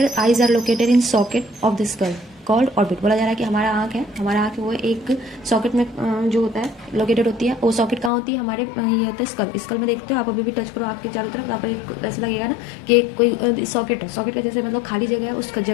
eyes are located in socket of the skull. Called orbit. बोला जा रहा है कि हमारा आँख है, हमारा आँख वो एक सॉकेट में जो होता है लोकेटेड होती है। वो सॉकेट कहाँ होती है? हमारे ये होता है स्कल। स्कल में देखते हो आप, अभी भी टच करो आपके चारों तरफ, आप ऐसा लगेगा ना कि कोई सॉकेट है, सॉकेट का जैसे मतलब खाली जगह है, उस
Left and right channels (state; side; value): drops out; right; at 8.1 s